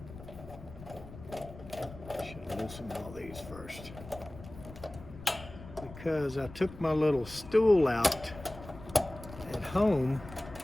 I should loosen all these first. Because I took my little stool out at home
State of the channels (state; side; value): noise; left; rumble, 15 dB below the sound